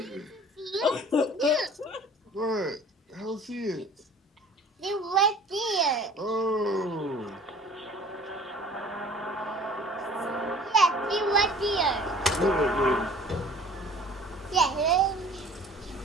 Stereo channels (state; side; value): normal; both; correlation 0.48